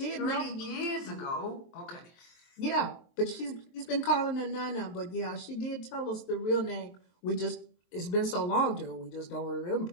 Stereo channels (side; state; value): right; late; 23 ms